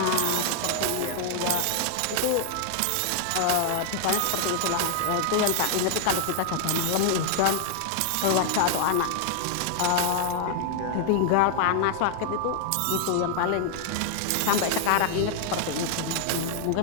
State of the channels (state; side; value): different; both; correlation -0.01